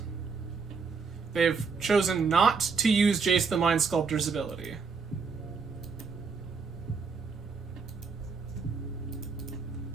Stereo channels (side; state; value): left; quieter; 5.1 dB